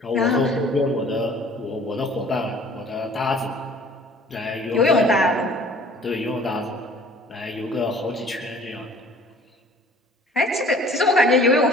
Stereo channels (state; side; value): normal; both; correlation 0.51